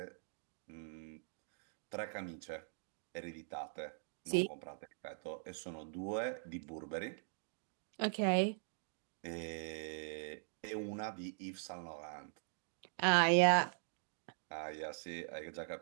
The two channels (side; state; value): left; silent; digital silence